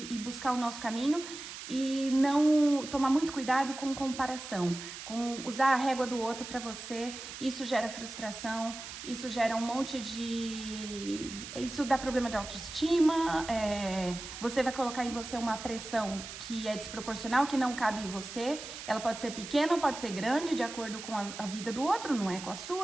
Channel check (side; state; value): right; noise; hiss, 11 dB below the sound